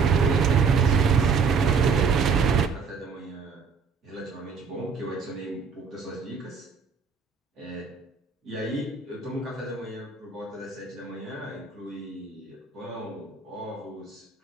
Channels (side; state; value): left; quieter; 5.5 dB